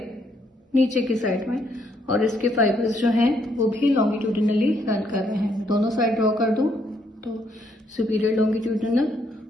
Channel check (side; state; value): both; normal; correlation 0.72